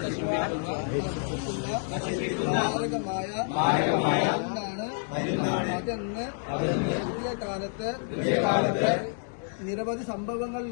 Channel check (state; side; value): silent; right; 55 dB below the other